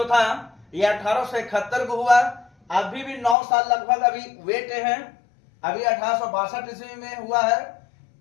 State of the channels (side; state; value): right; drops out; at 3.4 s